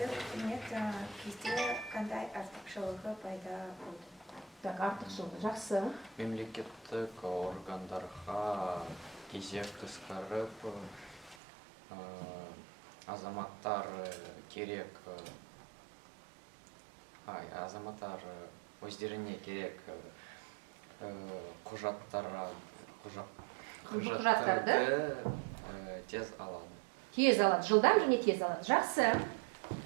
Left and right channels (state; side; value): drops out; left; at 11.4 s